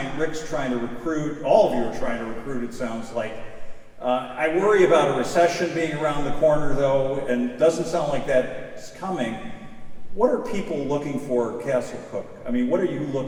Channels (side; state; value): both; identical; correlation 1.00